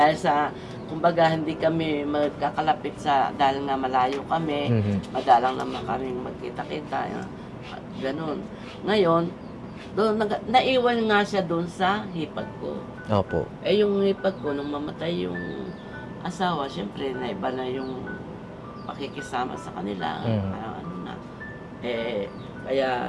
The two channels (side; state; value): both; identical; correlation 1.00